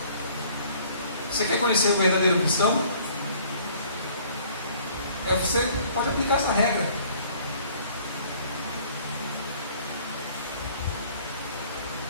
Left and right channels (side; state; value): both; inverted; correlation -0.56